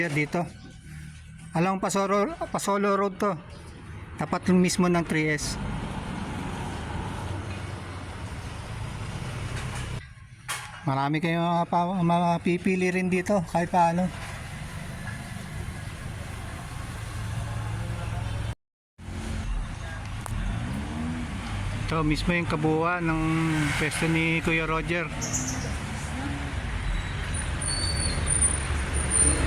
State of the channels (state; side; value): identical; both; correlation 1.00